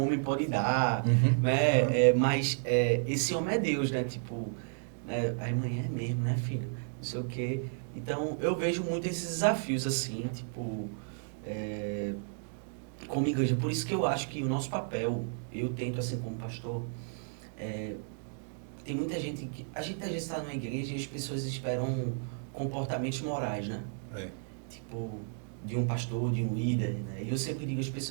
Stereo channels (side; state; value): left; silent; digital silence